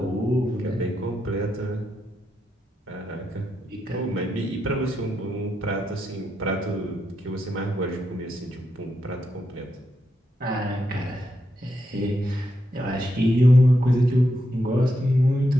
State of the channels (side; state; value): both; normal; correlation 0.83